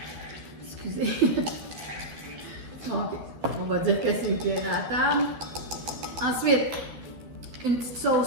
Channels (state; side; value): late; left; 12 ms